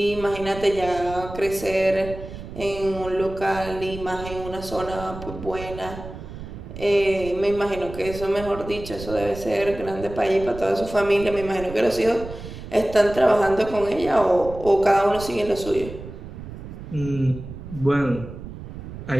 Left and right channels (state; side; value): noise; right; rumble, 12 dB below the sound